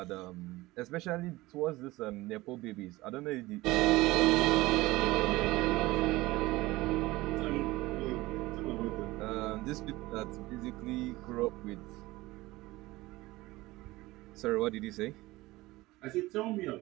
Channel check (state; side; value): quieter; left; 19.5 dB